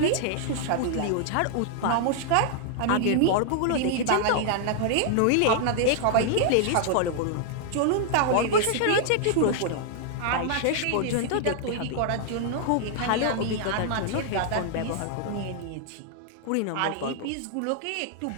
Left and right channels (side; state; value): both; different; correlation 0.00